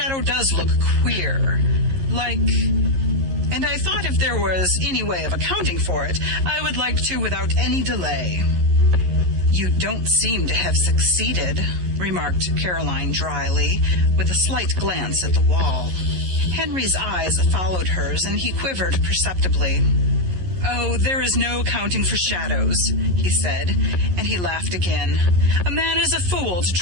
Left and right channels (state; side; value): late; left; 11 ms